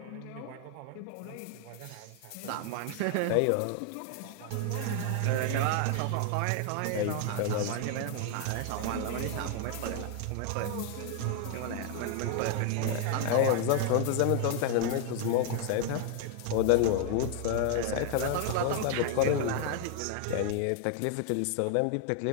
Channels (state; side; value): different; both; correlation 0.00